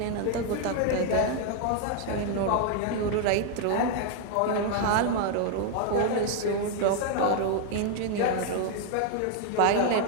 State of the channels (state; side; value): different; both; correlation 0.00